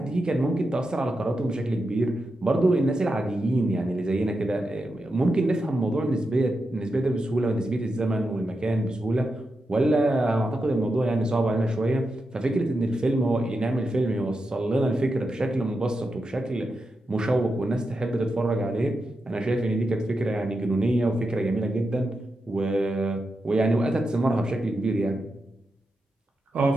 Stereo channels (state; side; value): normal; both; correlation 0.88